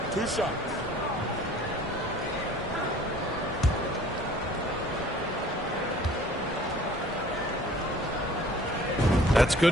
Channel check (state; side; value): normal; both; correlation 0.51